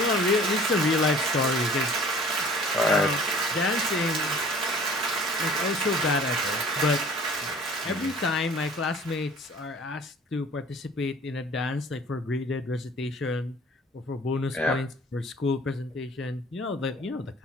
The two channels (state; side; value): normal; both; correlation 0.49